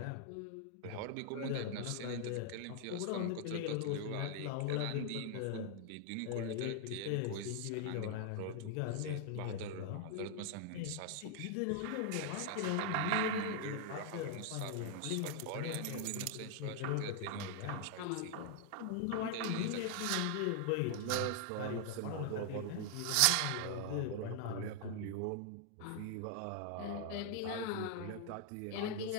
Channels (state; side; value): different; both; correlation 0.00